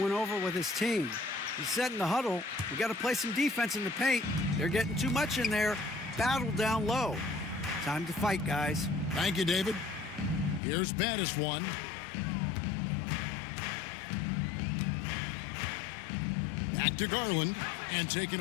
over with his team. He said in the huddle, we got to play some defense in the paint. They're getting too much in there. Battle down low. Time to fight, guys. Thank you, David. Here's Battiswan. Back to Garland, and taken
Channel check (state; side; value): drops out; right; at 10.6 s